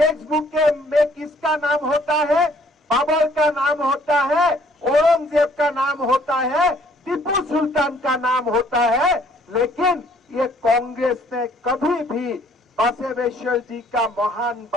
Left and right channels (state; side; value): normal; both; correlation 0.61